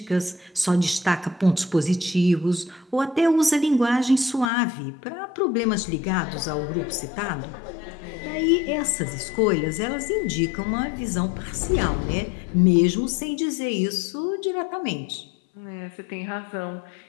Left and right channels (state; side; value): drops out; right; at 4.5 s